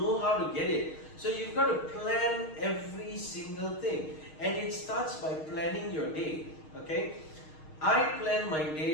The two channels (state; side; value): late; right; 6.5 ms